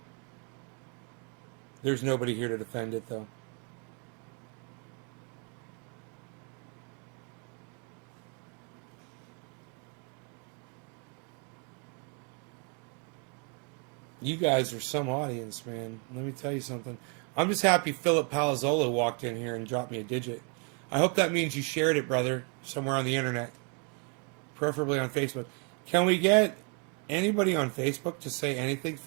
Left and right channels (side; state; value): left; quieter; 36.9 dB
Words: There's nobody here to defend it, though. You guys are some audience, man. Let me tell you something. I'm just happy Philip Palazzolo walked in here and dropped me a digit. I hope that means you shared it, brother, somewhere on the internet. Preferably on Facebook. Can we get anybody on Facebook to say anything?